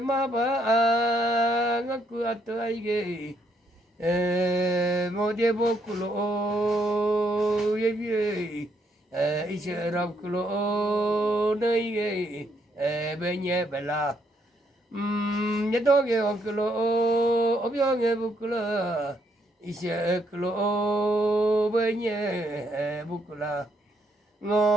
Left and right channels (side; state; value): both; normal; correlation 0.73